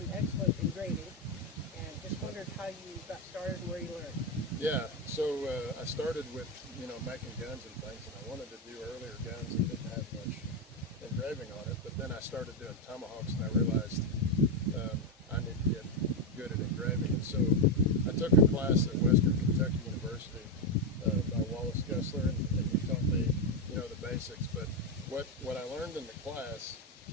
excellent engraving, and just wondered how you got started and where you learned. Yeah, so I started with, making guns and things, and I wanted to do earlier guns that didn't have much engraving on it, but then I started doing tomahawks, and I realized I need to get good at engraving. And so I took a class at Western Kentucky University by Wallace Gessler, and he taught me, the basics. But what I learned in the class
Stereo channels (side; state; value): both; normal; correlation 0.07